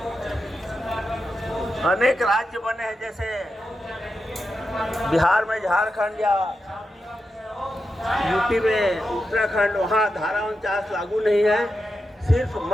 अनेक राज्य बने हैं, जैसे बिहार में झारखंड या यूपी में उत्तराखंड, वहाँ धारा 49 लागू नहीं है। सिर्फ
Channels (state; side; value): normal; both; correlation 0.89